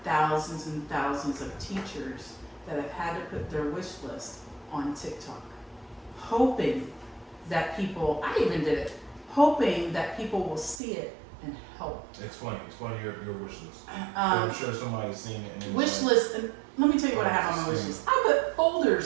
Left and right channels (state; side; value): drops out; left; at 10.8 s